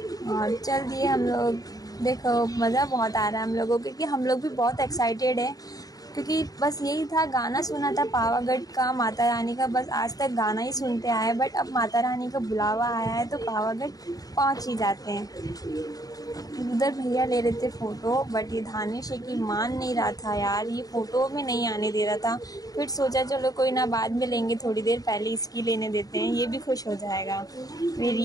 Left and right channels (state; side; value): late; right; 0.18 ms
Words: और चल दिए हम लोग। देखो मज़ा बहुत आ रहा है हम लोगों को क्योंकि हम लोग भी बहुत एक्साइटेड है क्योंकि बस यही था, गाना सुना था पावागढ़ का, माता रानी का। बस आज तक गाना ही सुनते आए, बट अब माता रानी का बुलावा आया है तो पावागढ़ पहुँच ही जाते हैं। उधर भैया ले रहे थे फ़ोटो, बट ये धानेश की मान नहीं रहा था यार, ये फ़ोटो में नहीं आने दे रहा था। फिर सोचा चलो कोई ना, बाद में लेंगे, थोड़ी देर पहले इसकी लेने देते हैं, ये भी खुश हो जाएगा। फिर